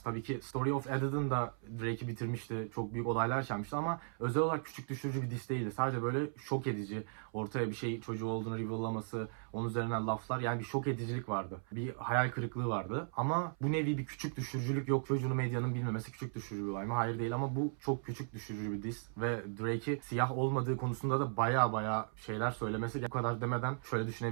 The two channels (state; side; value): silent; left; 53 dB below the other